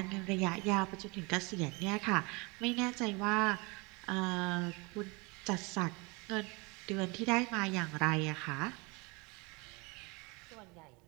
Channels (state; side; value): quieter; left; 27.9 dB